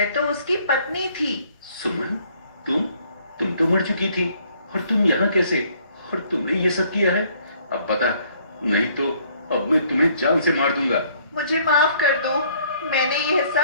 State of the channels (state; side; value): inverted; both; correlation -0.62